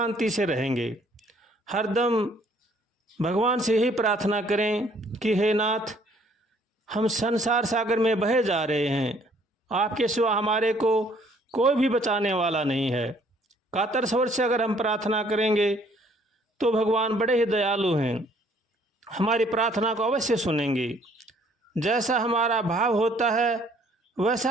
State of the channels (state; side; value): normal; both; correlation 0.62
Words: से रहेंगे। हरदम भगवान से यही प्रार्थना करें कि हे नाथ हम संसार सागर में बहे जा रहे हैं, आपके सिवा हमारे को कोई भी बचाने वाला नहीं है। कातर स्वर से अगर हम प्रार्थना करेंगे तो भगवान बड़े ही दयालु हैं, हमारी प्रार्थना को अवश्य सुनेंगे। जैसा हमारा भाव होता है